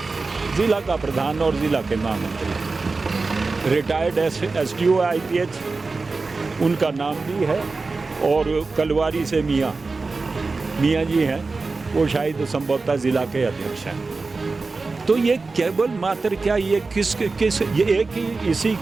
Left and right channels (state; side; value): quieter; left; 3.9 dB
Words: प्रधान और जिला के महामंत्री, रिटायर्ड एसडीओ आईपीएच उनका नाम भी है, और कलवारी से मियाँ जी हैं, वो शायद संभवतः जिला के अध्यक्ष हैं। तो ये केवल मात्र क्या ये किस ये एक ही इसी